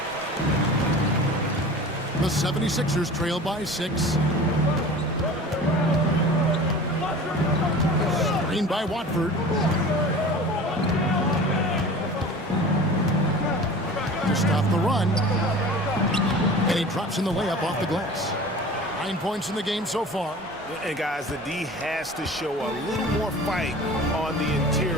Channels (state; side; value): normal; both; correlation 0.39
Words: The 76ers trail by 6. Screen by Watford. To stop the run. And he drops in the layup off the glass. 9 points in the game so far. And guys, the D has to show a little more fight on the